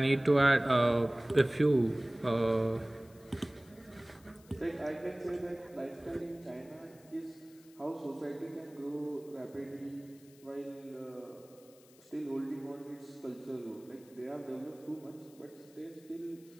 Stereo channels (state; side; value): noise; left; hiss, 26 dB below the sound